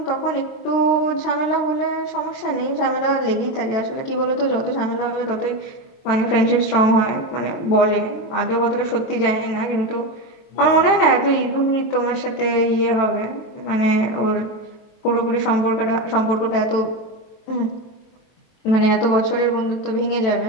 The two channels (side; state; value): right; late; 23 ms